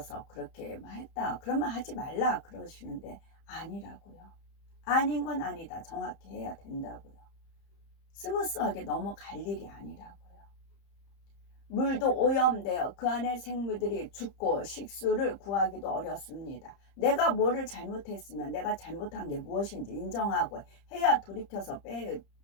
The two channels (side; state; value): right; late; 30 ms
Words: 그렇게 했다 그러면 하지 말라 그러시는데 아니라고요. 아닌 건 아니다 정확히 해야 된다고요. 스무스하게 넘어갈 일이 아니라고요. 물도 오염되어 그 안에 생물들이 죽고 식수를 구하기도 어렵습니다. 내가 뭐를 잘못했으면 내가 잘못한 게 무엇인지 인정하고 해야 돌이켜서